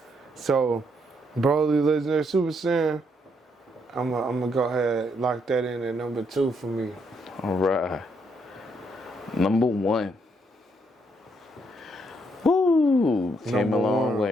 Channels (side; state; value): both; normal; correlation 0.74